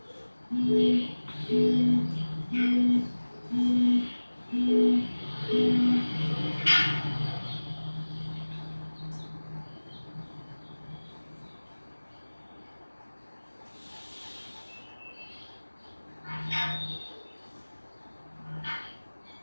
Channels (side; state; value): both; inverted; correlation -1.00